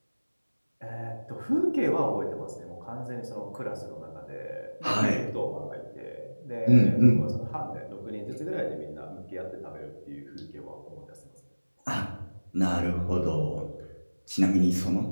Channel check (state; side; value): inverted; both; correlation -1.00